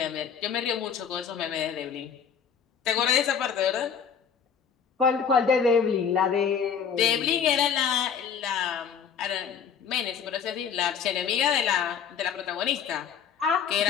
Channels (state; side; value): quieter; right; 7.2 dB